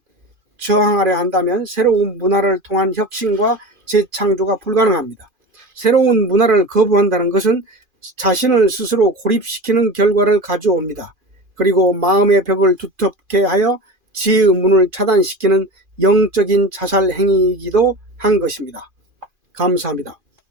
저항하려 한다면 새로운 문화를 통한 혁신과 재창조가 불가능합니다. 새로운 문화를 거부한다는 것은 자신을 스스로 고립시키는 결과를 가져옵니다. 그리고 마음의 벽을 두텁게 하여 지혜의 문을 차단시키는 영적인 자살 행위이기도 한 것입니다. 감사합니다.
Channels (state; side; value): late; left; 2.4 ms